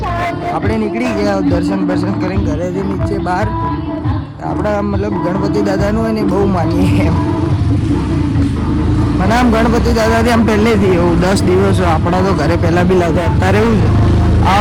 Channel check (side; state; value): both; identical; correlation 1.00